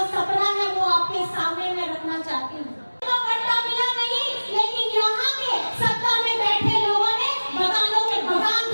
सपना है, वो आपके सामने मैं रखना चाहती हूँ। पट्टा मिला नहीं, लेकिन यहाँ के सत्ता में बैठे लोगों ने मकानों के मकान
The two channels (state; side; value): inverted; both; correlation -1.00